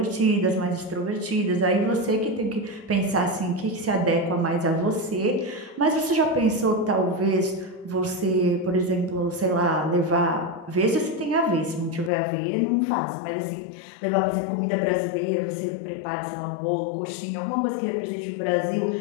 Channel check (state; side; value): drops out; right; at 12.1 s